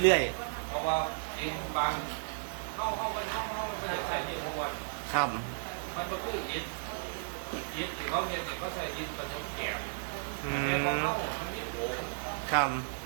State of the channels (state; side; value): silent; left; digital silence